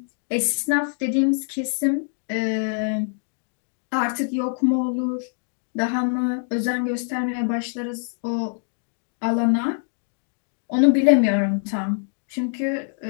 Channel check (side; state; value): right; silent; 62 dB below the other